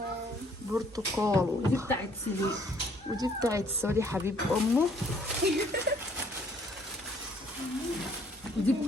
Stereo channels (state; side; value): normal; both; correlation 0.62